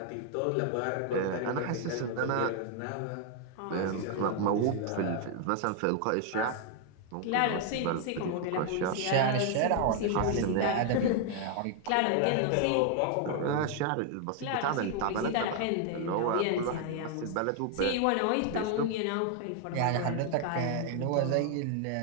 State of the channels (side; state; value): both; different; correlation 0.00